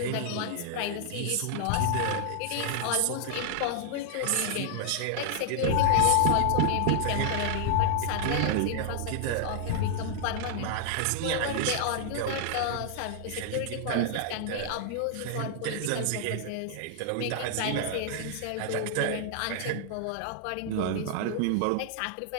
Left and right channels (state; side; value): different; both; correlation 0.00